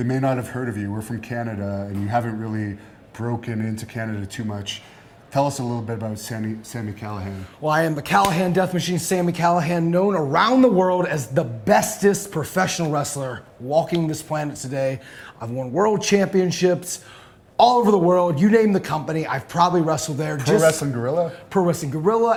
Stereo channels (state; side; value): identical; both; correlation 1.00